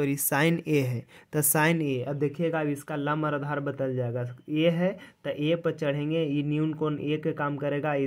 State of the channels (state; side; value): identical; both; correlation 1.00